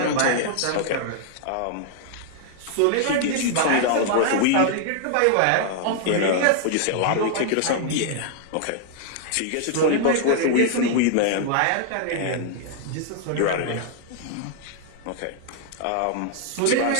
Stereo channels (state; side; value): different; both; correlation -0.01